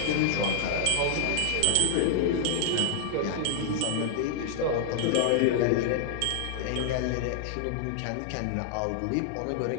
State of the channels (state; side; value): different; both; correlation 0.00